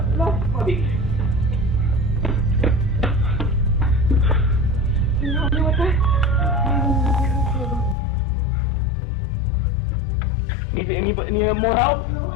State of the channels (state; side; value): drops out; right; at 8.0 s